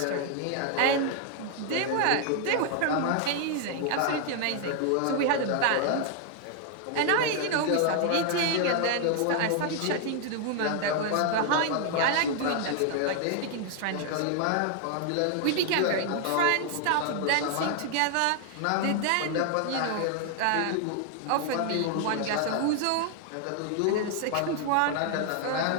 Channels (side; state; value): both; different; correlation 0.00